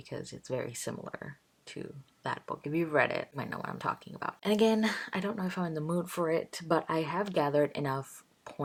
it's very similar to that book. If you've read it, you might know what I'm talking about. And again, I don't know if I'm in the mood for it, but I have gathered enough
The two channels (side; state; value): both; identical; correlation 1.00